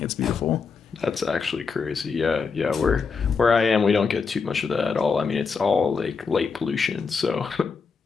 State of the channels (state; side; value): quieter; right; 5.2 dB